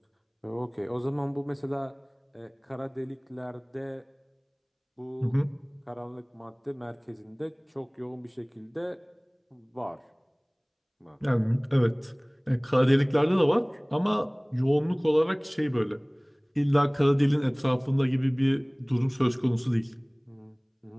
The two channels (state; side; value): identical; both; correlation 1.00